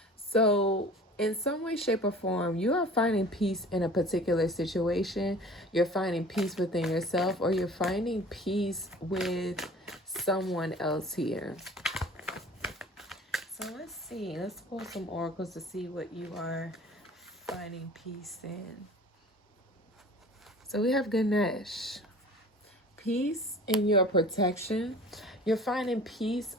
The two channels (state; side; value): normal; both; correlation 0.44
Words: So, in some way, shape, or form, you are finding peace in a particular situation. You're finding peace within yourself, or you're finding peace with someone else here. So, let's see. Let's pull some oracles to see what you are finding peace in. So, we have Ganesh. Peace in your protection. You're finding peace